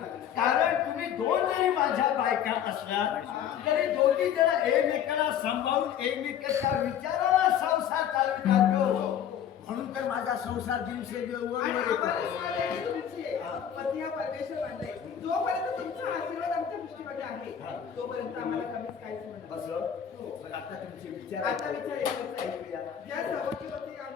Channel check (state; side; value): quieter; right; 9.3 dB